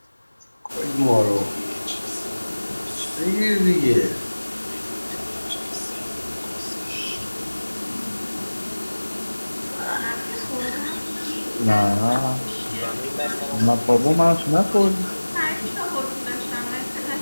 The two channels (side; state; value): both; inverted; correlation -1.00